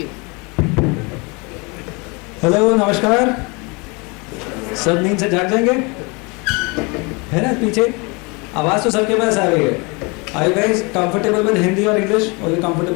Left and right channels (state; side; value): quieter; right; 29.2 dB